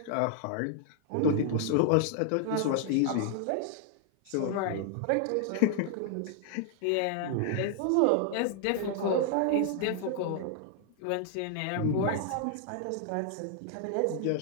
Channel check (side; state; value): both; different; correlation 0.00